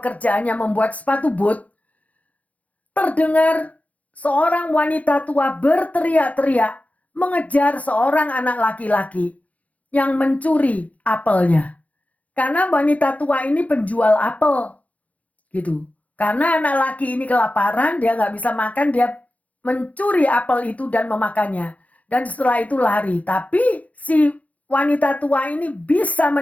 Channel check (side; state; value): right; late; 0.070 ms